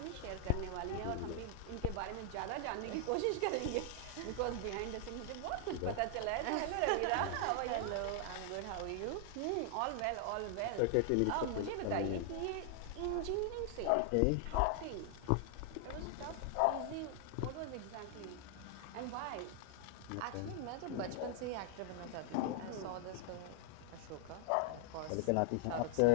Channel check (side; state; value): both; different; correlation 0.00